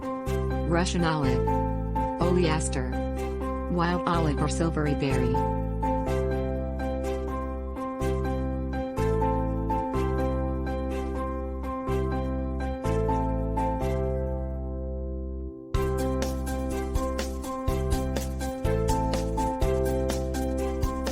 Russian olive, oleaster, wild olive or silvery berry.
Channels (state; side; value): identical; both; correlation 1.00